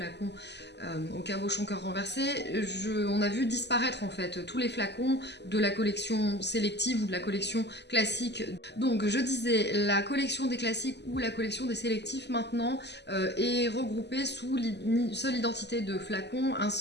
au cabochon cœur renversé, on a vu disparaître en fait tous les flacons de la collection sélective ou de la collection classique. Donc je disais, la collection des classiques ou la collection des sélectifs maintenant est regroupée sous une seule identité de flacon, un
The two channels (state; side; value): late; right; 0.50 ms